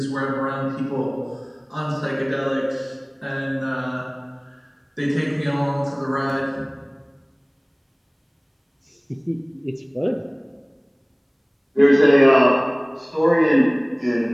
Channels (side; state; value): both; identical; correlation 1.00